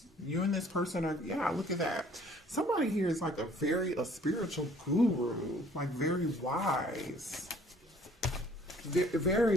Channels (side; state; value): both; normal; correlation 0.57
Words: You and this person are, yeah, look at that. Somebody here is like a spiritual guru, like very wise.